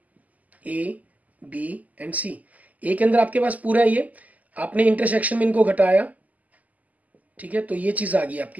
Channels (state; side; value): late; left; 0.077 ms